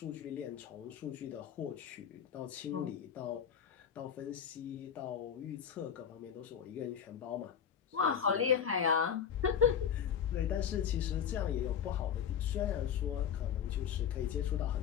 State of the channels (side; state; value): right; quieter; 8.1 dB